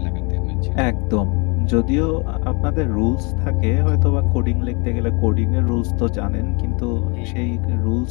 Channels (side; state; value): right; quieter; 31.1 dB